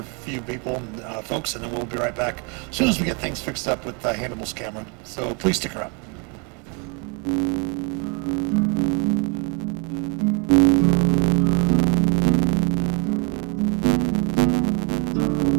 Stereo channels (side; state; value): left; quieter; 34.2 dB